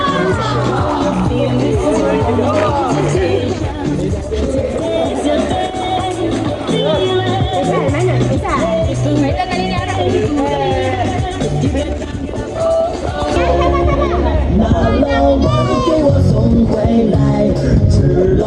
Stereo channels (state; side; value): identical; both; correlation 1.00